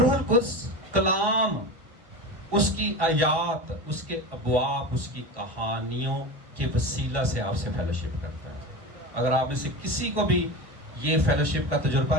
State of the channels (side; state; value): left; late; 1.1 ms